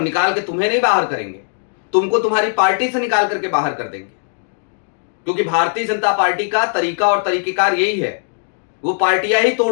निकाल के तुम्हें नहीं बाहर करेंगे, तुमको तुम्हारी पार्टी से निकाल करके बाहर कर देंगे, क्योंकि भारतीय जनता पार्टी का तरीका और तरीकेकार यही है, वो पार्टियां ही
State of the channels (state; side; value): silent; right; digital silence